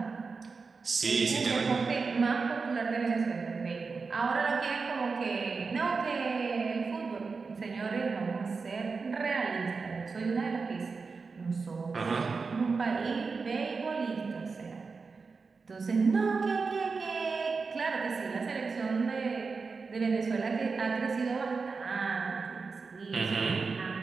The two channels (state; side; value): quieter; left; 4.6 dB